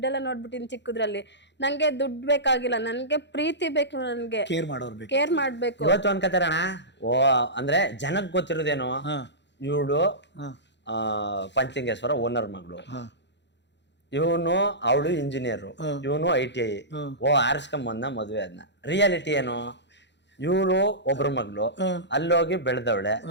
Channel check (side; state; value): right; late; 0.52 ms